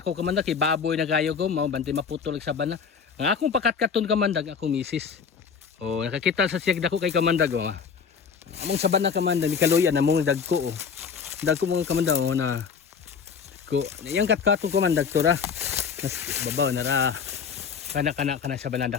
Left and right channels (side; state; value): right; quieter; 6.3 dB